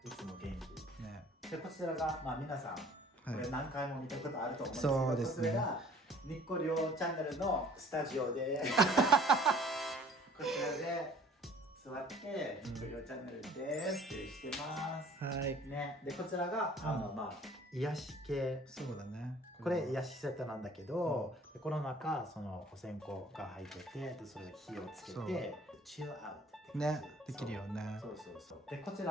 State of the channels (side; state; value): both; normal; correlation 0.53